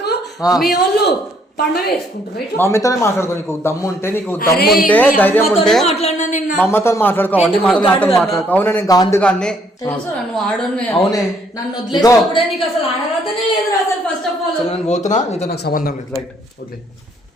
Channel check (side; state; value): both; normal; correlation 0.67